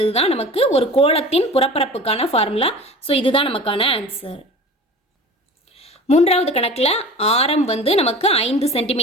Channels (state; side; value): normal; both; correlation 0.38